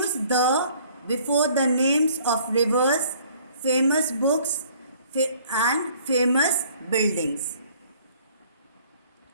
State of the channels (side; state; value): both; inverted; correlation -0.57